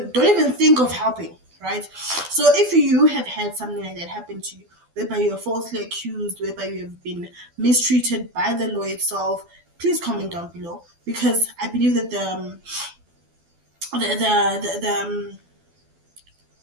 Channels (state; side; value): late; left; 12 ms